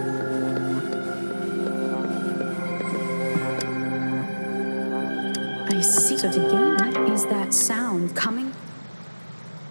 I see. So to gain, what is that sound coming?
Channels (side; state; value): both; inverted; correlation -1.00